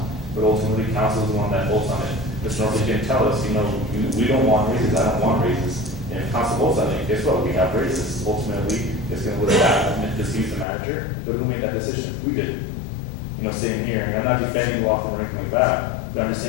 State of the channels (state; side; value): drops out; right; at 10.7 s